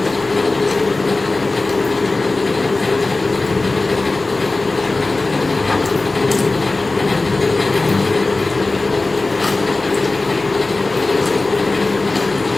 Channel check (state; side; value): quieter; right; 3.2 dB